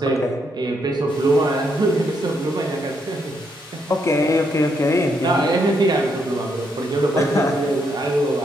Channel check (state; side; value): normal; both; correlation 0.76